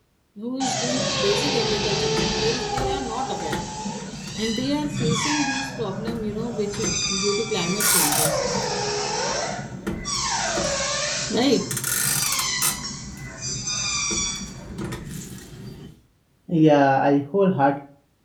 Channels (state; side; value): identical; both; correlation 1.00